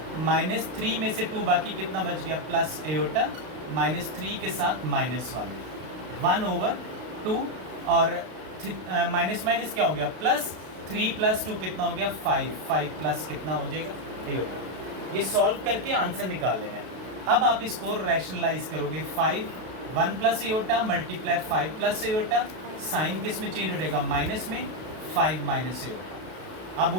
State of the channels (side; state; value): left; late; 32 ms